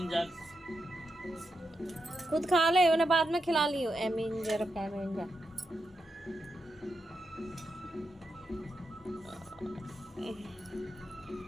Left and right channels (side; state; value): both; normal; correlation 0.85